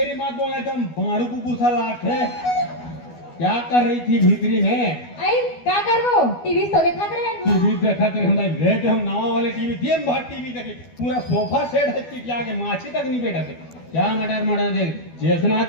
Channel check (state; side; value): late; right; 12 ms